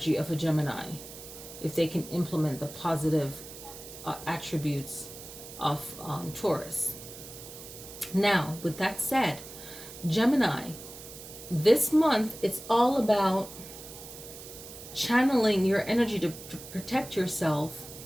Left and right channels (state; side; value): noise; right; hiss, 14 dB below the sound